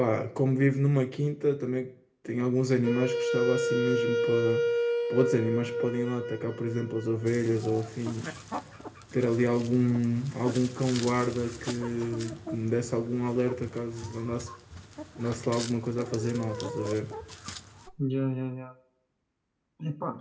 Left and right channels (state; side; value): identical; both; correlation 1.00